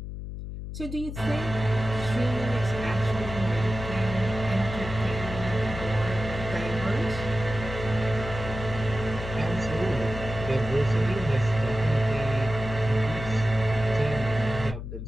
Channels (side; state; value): left; noise; hum, 8 dB below the sound